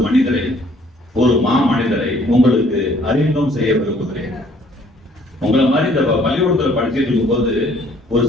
மனிதரை, ஒரு மனிதரை உங்களுக்கு அறிமுகம் செய்ய விரும்புகிறேன். உங்களை மாதிரி இந்த பள்ளிக்கூடத்துல படிச்சுட்டு இருக்கும் போது ஒரு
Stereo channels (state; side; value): normal; both; correlation 0.61